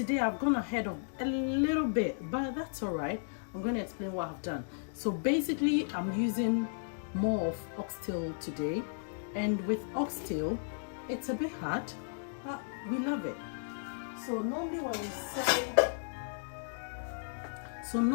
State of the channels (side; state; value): right; silent; digital silence